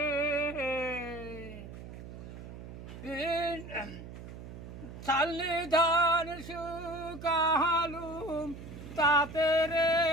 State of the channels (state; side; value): noise; right; hum, 12 dB below the sound